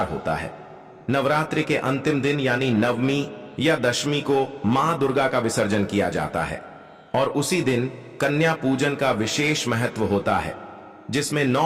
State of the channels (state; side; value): identical; both; correlation 1.00